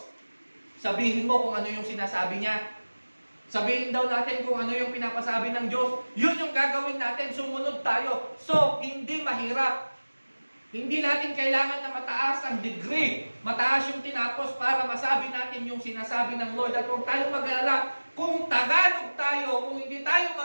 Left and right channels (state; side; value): inverted; both; correlation -1.00